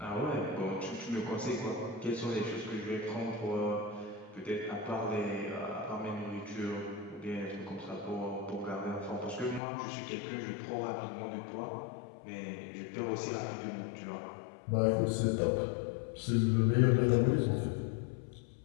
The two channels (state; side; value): drops out; right; at 9.6 s